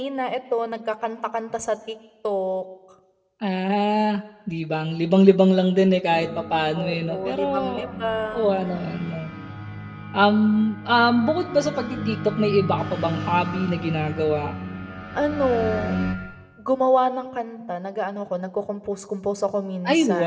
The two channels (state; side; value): identical; both; correlation 1.00